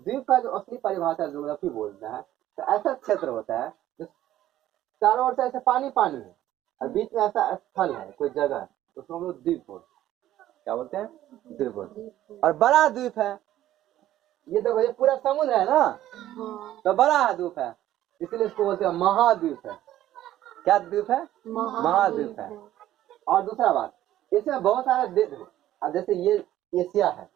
का जो असली परिभाषा ज्योग्राफी बोलता है, तो ऐसा क्षेत्र होता है जो चारों ओर से ऐसे पानी पानी है और बीच में ऐसा स्थल है, कोई जगह है, तो उसको हम लोग द्वीप बोलते हैं। क्या बोलते हैं, द्वीप बोलते हैं। और बड़ा द्वीप है, ये देखो ये पूरा समुद्र है ना, तो बड़ा द्वीप है, इसलिए इसको बोलते हैं महाद्वीप है। क्या द्वीप है, महाद्वीप है। और दूसरा बात, इसमें बहुत सारे देश है। अब जैसे ये एशिया है,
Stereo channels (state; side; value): quieter; left; 13.3 dB